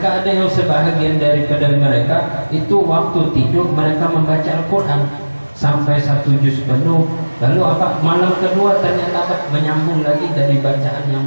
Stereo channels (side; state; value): both; inverted; correlation -1.00